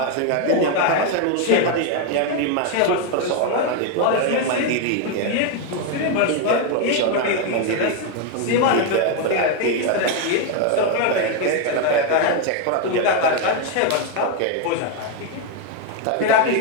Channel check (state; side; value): different; both; correlation 0.01